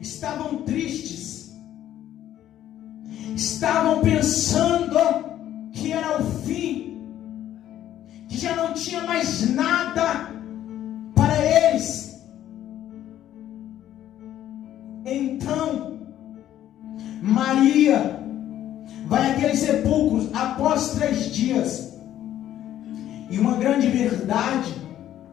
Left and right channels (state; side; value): quieter; right; 11.9 dB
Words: tristes, estavam pensando que era o fim, que já não tinha mais nada para eles. Então Maria vai àquele sepulcro após 3 dias. E uma grande verdade